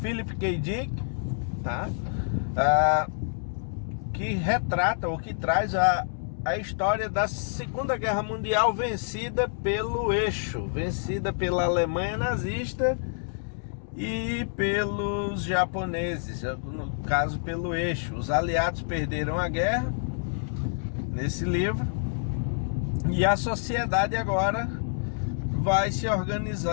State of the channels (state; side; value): silent; right; digital silence